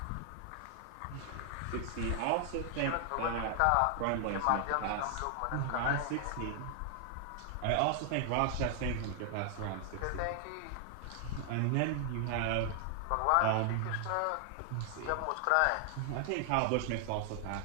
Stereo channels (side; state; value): both; different; correlation 0.00